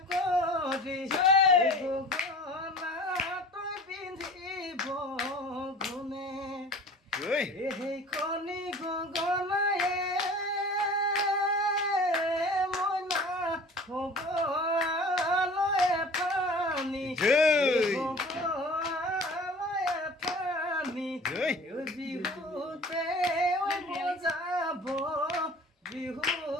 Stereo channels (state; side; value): normal; both; correlation 0.43